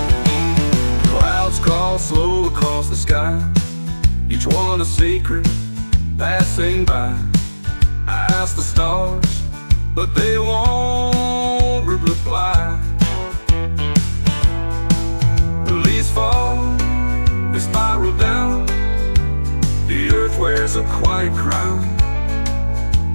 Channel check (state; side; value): inverted; both; correlation -1.00